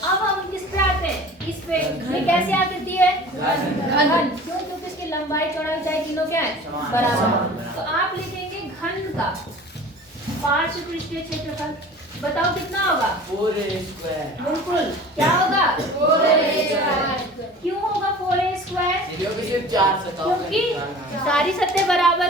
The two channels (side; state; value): both; normal; correlation 0.42